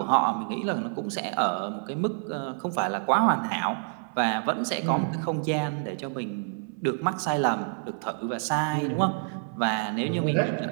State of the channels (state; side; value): silent; left; 60 dB below the other